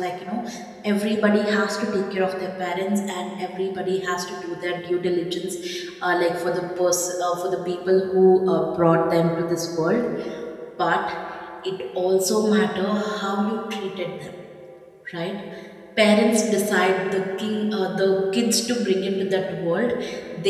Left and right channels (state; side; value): identical; both; correlation 1.00